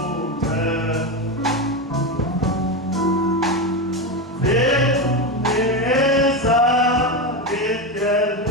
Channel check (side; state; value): both; normal; correlation 0.15